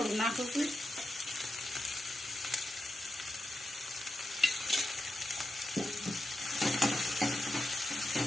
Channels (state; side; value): normal; both; correlation 0.89